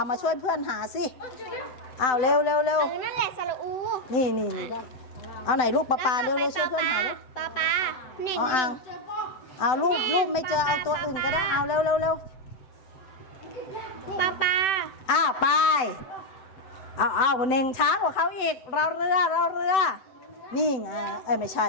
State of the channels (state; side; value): late; right; 7.8 ms